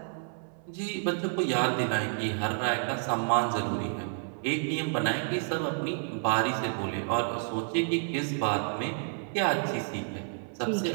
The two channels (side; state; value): left; silent; 58 dB below the other